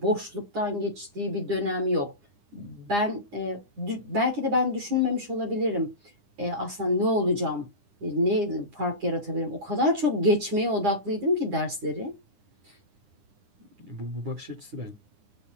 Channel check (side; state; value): left; late; 9.8 ms